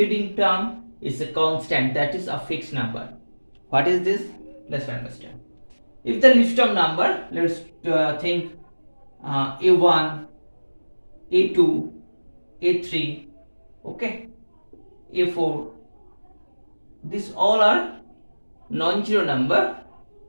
term is a constant, that is a fixed number. What is this? Let's understand. If the list of number, let's think a1, a2, a3, okay, a4, these all are non-zero number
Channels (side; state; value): both; inverted; correlation -1.00